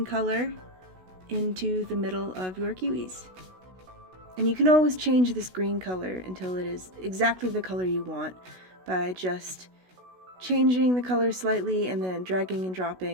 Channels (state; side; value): late; left; 16 ms